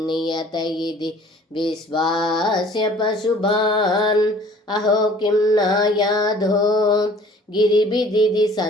நியத இதி விஸ்வாஸ்ய பசுபான் அஹோ கிம் நாயாதோ गिरिबिदिदि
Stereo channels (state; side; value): normal; both; correlation 0.52